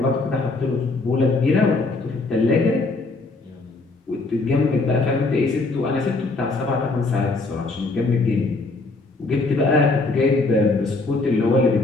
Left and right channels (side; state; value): right; quieter; 3.4 dB